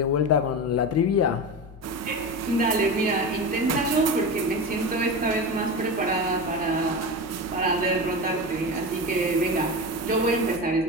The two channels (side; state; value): both; normal; correlation 0.24